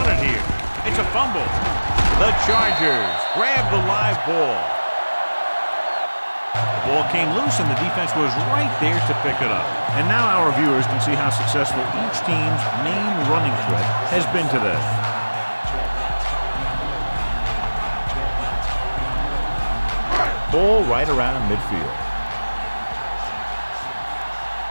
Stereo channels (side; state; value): both; inverted; correlation -1.00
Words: it here. It's a fumble. The Chargers grab the live ball. The ball came loose and the defense was right there to pick it up. And now our viewers can see how successful each team's main running threat has been today. Ball right around midfield.